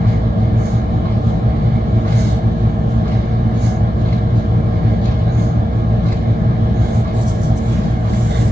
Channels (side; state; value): both; normal; correlation 0.92